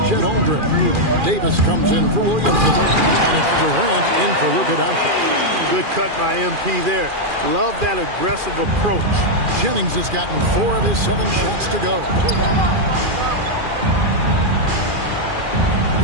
Chet Holmgren. Davis comes in for Williamson. And it's Durant in for Luka Doncic. Good cut by MP there. Love that aggressive approach. Jennings has gotten 4 of his 7 shots to go.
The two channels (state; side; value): late; left; 2.4 ms